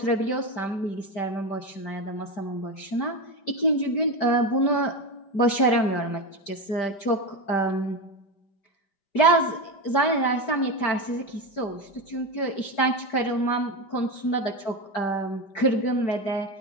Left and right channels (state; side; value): late; right; 5.1 ms